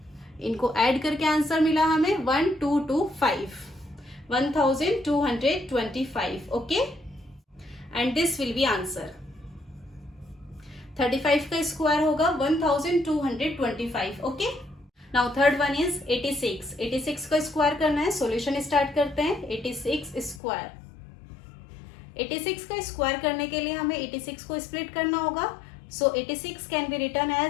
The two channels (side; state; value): right; drops out; at 20.4 s